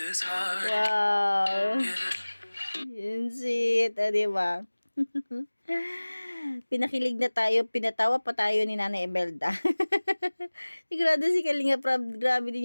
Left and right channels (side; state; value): both; inverted; correlation -1.00